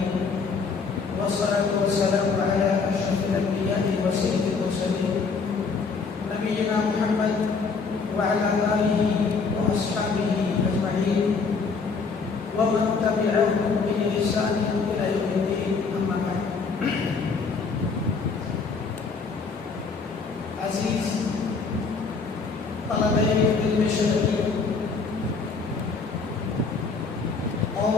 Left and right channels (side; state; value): right; quieter; 4.8 dB